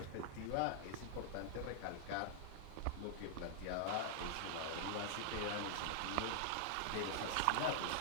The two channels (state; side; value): different; both; correlation -0.01